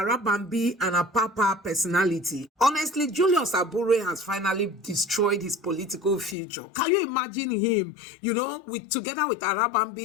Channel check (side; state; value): right; drops out; at 6.4 s